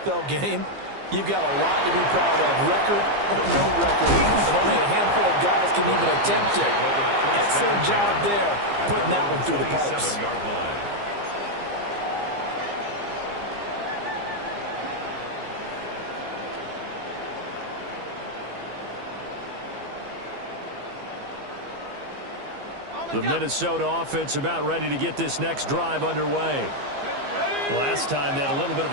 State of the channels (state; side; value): late; left; 15 ms